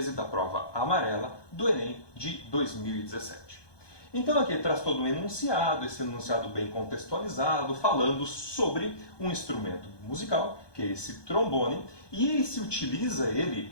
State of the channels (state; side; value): late; right; 1.2 ms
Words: da prova amarela do Enem de 2017. Então aqui traz todo um enunciado, esse enunciado bem contextualizado, falando sobre um instrumento musical, que é esse trombone, e ele se utiliza